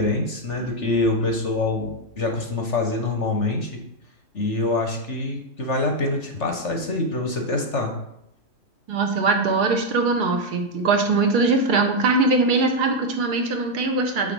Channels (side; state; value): right; late; 3.4 ms